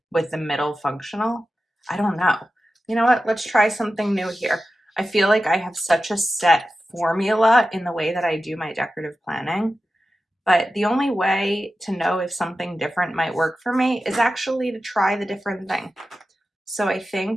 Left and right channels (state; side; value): normal; both; correlation 0.93